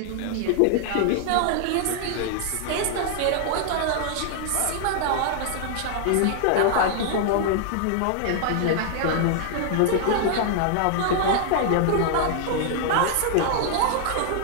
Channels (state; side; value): different; both; correlation 0.00